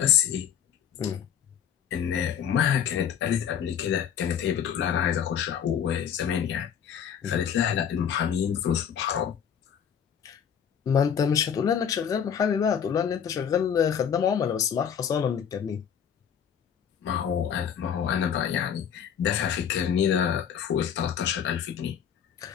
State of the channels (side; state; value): right; quieter; 8.3 dB